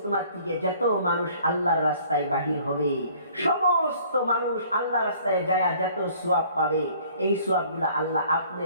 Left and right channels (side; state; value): both; inverted; correlation -0.55